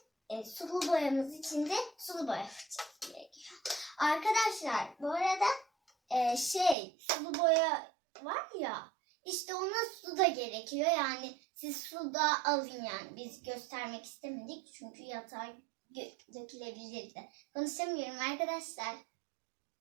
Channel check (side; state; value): left; drops out; at 6.8 s